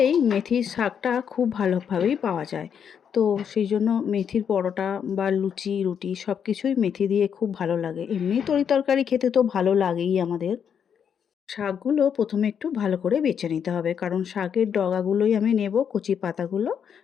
মেথির শাকটা খুব ভালোভাবেই পাওয়া যায়, তো সেই জন্য মেথির পরোটা বা লুচি রুটি সব কিছুই মেথি দিয়ে খুব ভালো লাগে। এমনি তরি তরকারি খেতে তো ভালো লাগেই আমাদের। শাকগুলো প্রথমে একটু ভালো করে বেছে নিতে হবে, কারণ শাকের ডগাগুলোই আমি নেব, কচি পাতাগুলো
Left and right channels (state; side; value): quieter; right; 7.7 dB